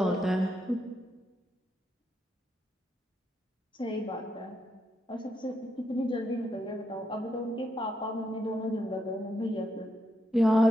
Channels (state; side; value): normal; both; correlation 0.80